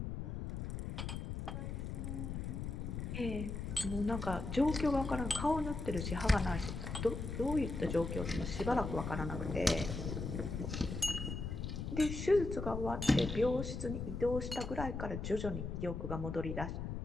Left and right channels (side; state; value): left; noise; rumble, 4 dB below the sound